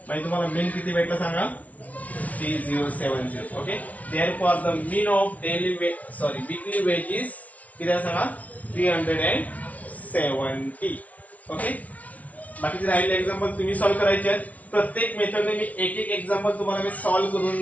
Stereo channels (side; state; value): right; late; 0.069 ms